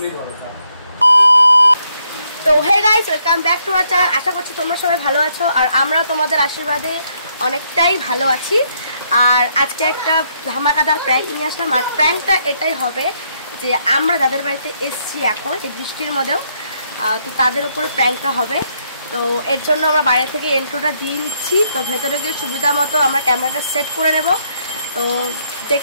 বলো। তো hey guys, welcome back to our channel. আশা করছি তোমরা সবাই ভালো আছো আর আমরাও তোমাদের আশীর্বাদে অনেকটাই ভালো আছি। আর আজকে একটা ধামাকাদার প্র্যাঙ্ক নিয়ে আসলাম। আর প্র্যাঙ্কটা এটাই হবে যে আমরা যাদের বাড়িতে এসছি এখন এই বৃষ্টির মধ্যেও, তো তাদের উপরে প্র্যাঙ্কটা হবে। তো এর জন্য আমরা বাইরে থেকে এন্ট্রোটা দিয়ে নিচ্ছি। তো ভেতরে গিয়ে সুবিধা মতো আমরা ক্যামেরাটা সেট করে নেব। তো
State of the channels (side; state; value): both; inverted; correlation -0.73